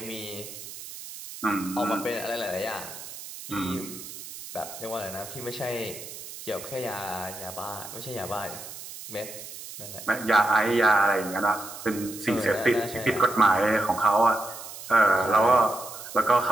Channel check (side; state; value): right; noise; hiss, 12 dB below the sound